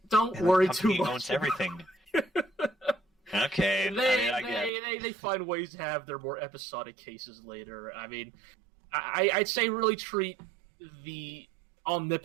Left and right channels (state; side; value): drops out; left; at 4.7 s